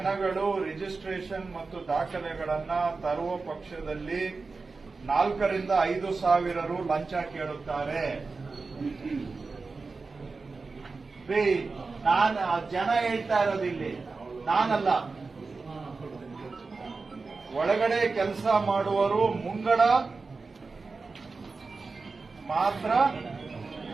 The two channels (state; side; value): quieter; left; 4.1 dB